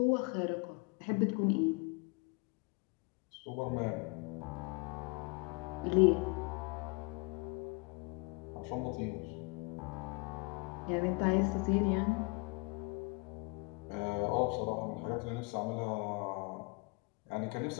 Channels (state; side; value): quieter; right; 29.6 dB